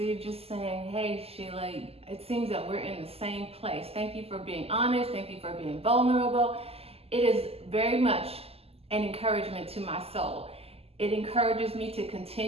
just saying, hey Sheila, it seems that we're in the same place. Thank you for being honest. Thank you for being vulnerable. It is very much an encouragement to my soul. It encourages me to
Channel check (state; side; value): late; left; 0.29 ms